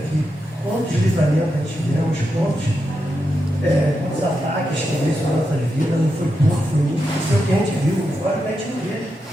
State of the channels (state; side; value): normal; both; correlation 0.86